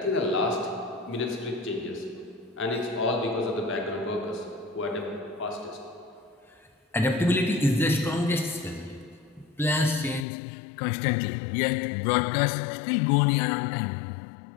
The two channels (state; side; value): drops out; right; at 10.2 s